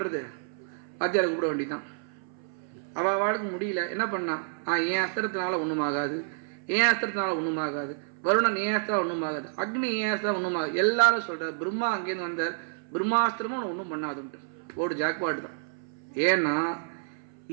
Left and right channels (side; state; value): left; silent; 58 dB below the other